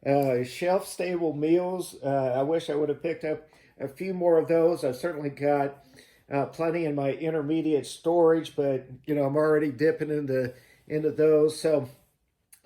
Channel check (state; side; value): identical; both; correlation 1.00